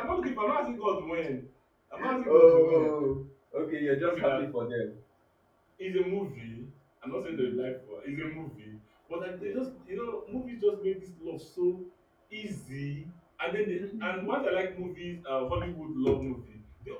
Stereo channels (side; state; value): both; identical; correlation 1.00